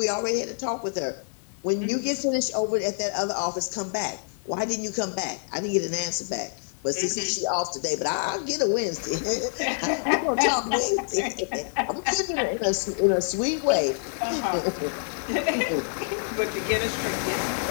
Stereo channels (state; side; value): silent; right; 58 dB below the other